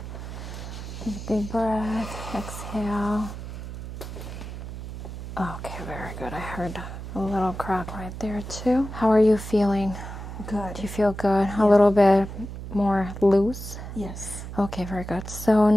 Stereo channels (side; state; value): right; noise; hum, 9 dB below the sound